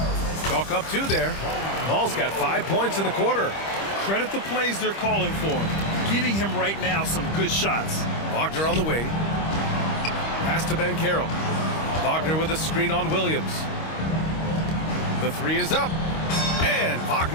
Chalk up 2 there. Ball's got 5 points in the quarter. Credit the plays they're calling for him. Getting him right now some good shots. Wagner on the wing. Pass to Banchero. Wagner with a screen on Williams. The 3 is up. And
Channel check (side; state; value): right; late; 25 ms